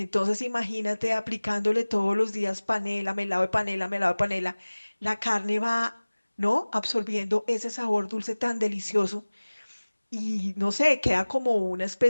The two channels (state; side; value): inverted; both; correlation -1.00